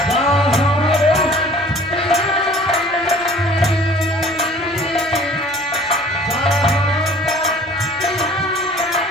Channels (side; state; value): left; noise; rumble, 30 dB below the sound